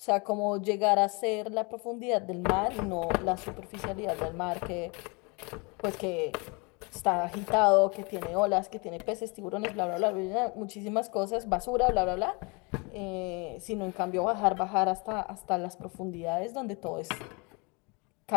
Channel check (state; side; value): quieter; right; 30.2 dB